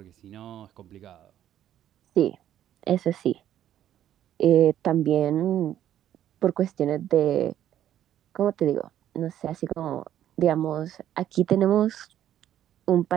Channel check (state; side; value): quieter; left; 11.3 dB